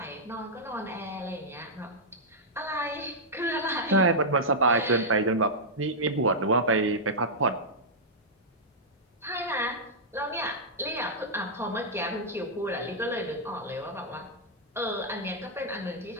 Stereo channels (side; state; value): both; normal; correlation -0.09